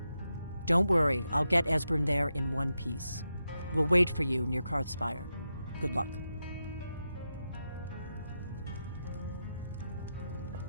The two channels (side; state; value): both; inverted; correlation -0.88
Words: Don't worry, I'll get Esbern there in one piece. We'll wait for you near Karthspire. Good luck.